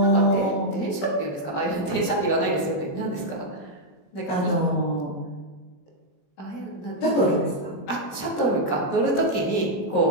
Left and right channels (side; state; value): right; late; 21 ms